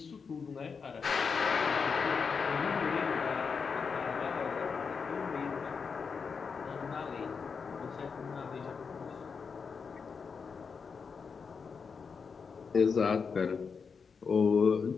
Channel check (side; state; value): right; quieter; 5.6 dB